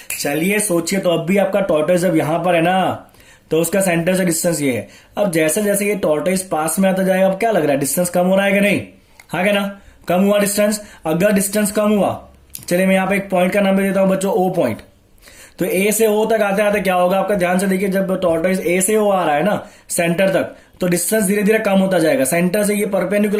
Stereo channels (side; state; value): both; identical; correlation 1.00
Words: चलिए सोचिए, तो अब भी आपका टॉर्टोइस जब यहां पर है ना, तो उसका सेंटर से डिस्टेंस ये है। अब जैसे जैसे ये टॉर्टोइस पास में आता जाएगा, अब क्या लग रहा है, डिस्टेंस कम हो रहा है कि नहीं? हाँ क्या ना, कम हुआ डिस्टेंस। अगर डिस्टेंस कम हुआ, चलिए मैं यहाँ पे एक पॉइंट का नाम दे देता हूं बच्चों, ओ पॉइंट। तो ए से ओ तक आते आते क्या होगा आपका, ध्यान से देखिए, जब टॉर्टोइस ए से ओ आ रहा है ना सेंटर तक, तो डिस्टेंस धीरे धीरे कम होता जाएगा। सेंटर से ये